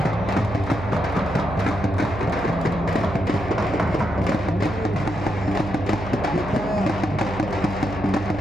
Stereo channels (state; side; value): noise; right; hum, 10 dB below the sound